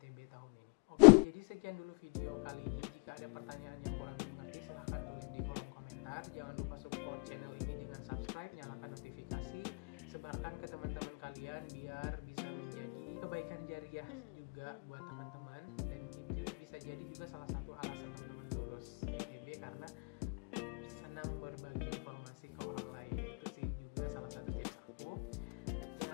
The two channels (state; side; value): quieter; right; 36.1 dB